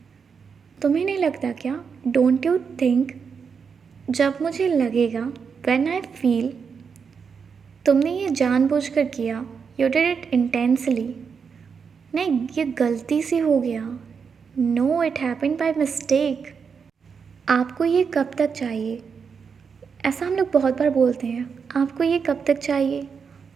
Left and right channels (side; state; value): left; quieter; 6.1 dB